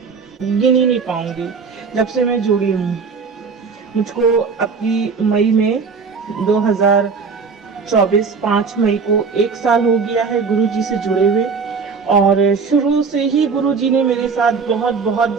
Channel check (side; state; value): left; quieter; 5.2 dB